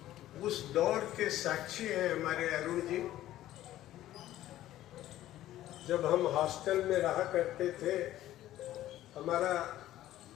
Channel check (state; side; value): quieter; right; 13.9 dB